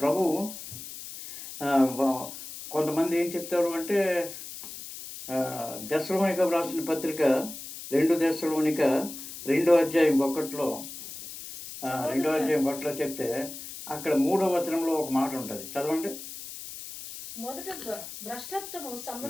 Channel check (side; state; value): left; noise; hiss, 11 dB below the sound